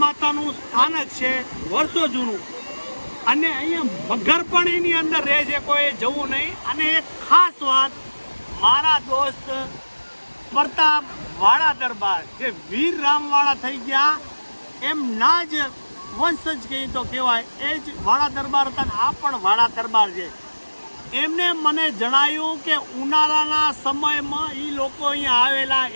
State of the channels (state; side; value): inverted; both; correlation -1.00